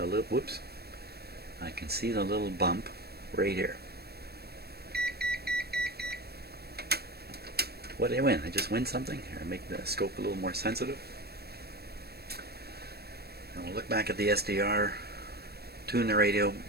little, whoops, I can see the little bump right here. What did I win? I just win something? Here, make the scope a little more sensitive. And we'll look back at the SDR, tune the radio.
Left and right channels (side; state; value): left; late; 0.47 ms